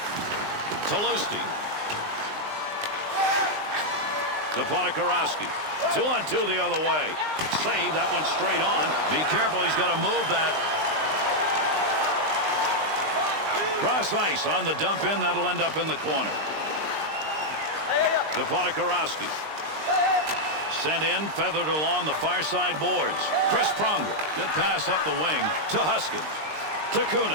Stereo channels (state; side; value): late; left; 19 ms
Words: Talusti. Deponikarowski. 2-on-2 the other way. Save that one straight on. Be careful, he's got to move that. Cross ice on the dump in. That'll end up in the corner. Deponikarowski. Sent in, feathered along the far side boards. Chris Pronger. Good pass up the wing to Huskins. To